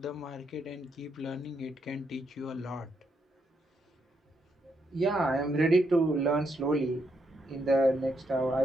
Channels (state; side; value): normal; both; correlation 0.78